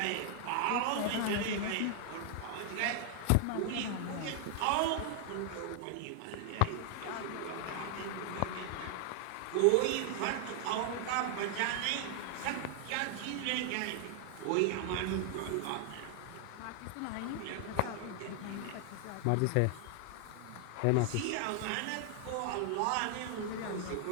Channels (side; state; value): both; different; correlation 0.00